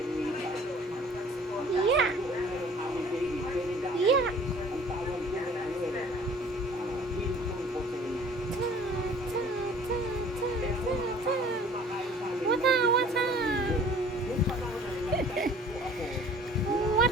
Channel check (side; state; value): both; normal; correlation 0.51